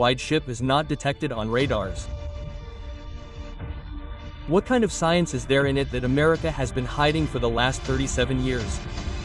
ship is not detected on radars. What kind of science is there in it that America has been hiding for the last 37 years?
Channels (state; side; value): identical; both; correlation 1.00